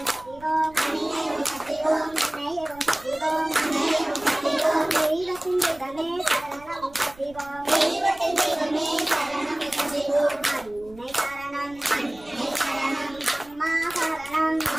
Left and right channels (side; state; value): right; noise; rumble, 23 dB below the sound